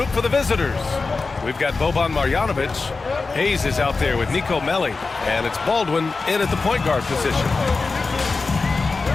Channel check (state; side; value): quieter; right; 4.1 dB